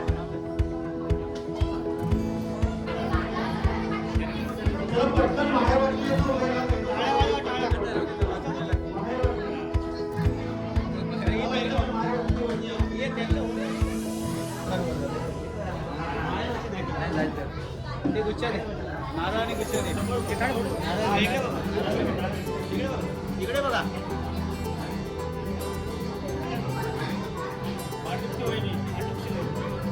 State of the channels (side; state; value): both; identical; correlation 1.00